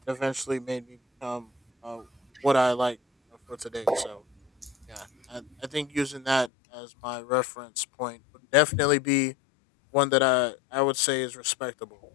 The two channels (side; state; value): right; drops out; at 6.5 s